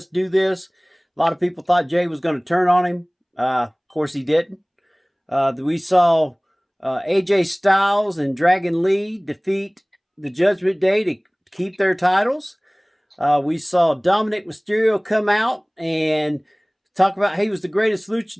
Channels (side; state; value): both; identical; correlation 1.00